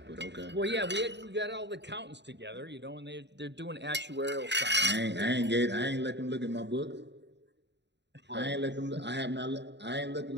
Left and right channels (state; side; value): late; left; 0.51 ms